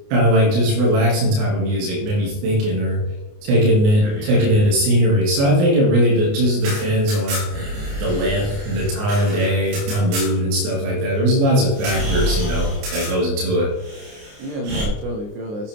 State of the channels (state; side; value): late; left; 29 ms